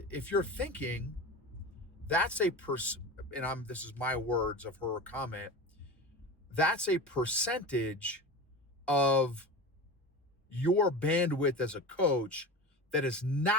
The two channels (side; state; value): both; normal; correlation 0.29